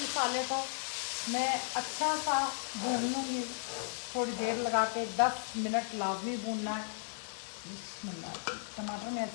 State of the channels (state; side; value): silent; right; digital silence